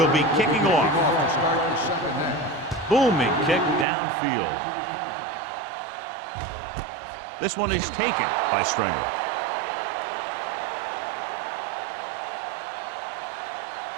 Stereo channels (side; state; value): left; drops out; at 3.9 s